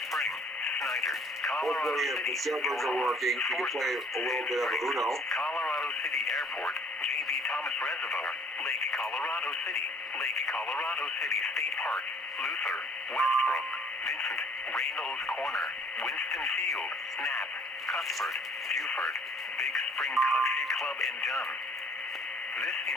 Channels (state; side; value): normal; both; correlation 0.56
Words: Spring, Snyder, Colorado Hopefully, if City, the servers are working, we can play a little bit of Uno. Colorado City Airport, JB Thomas Reservoir, Lake Colorado City State Park, Luther, Westbrook, Vincent, Reynolds Corner, Winston Field, Knapp, Cuthbert, Buford, Big Spring Country Club, and Dunn. This